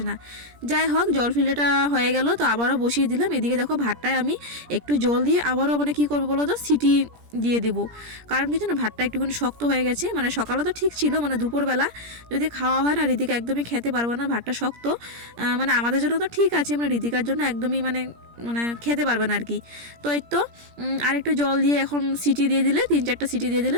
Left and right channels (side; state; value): left; late; 17 ms